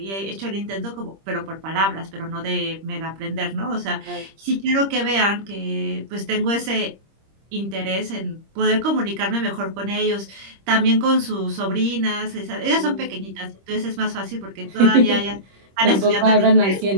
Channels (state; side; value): late; left; 25 ms